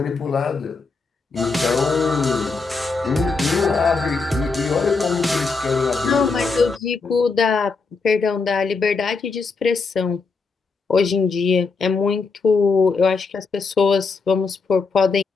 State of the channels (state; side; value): quieter; right; 4.4 dB